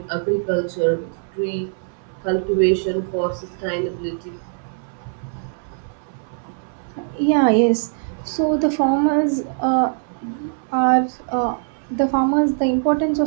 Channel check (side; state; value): left; silent; 62 dB below the other